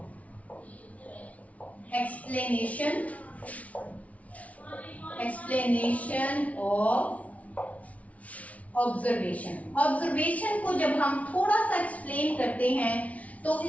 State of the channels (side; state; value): right; late; 0.067 ms